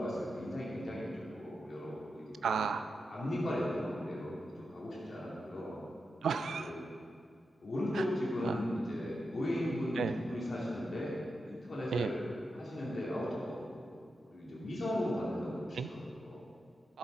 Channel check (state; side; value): normal; both; correlation 0.88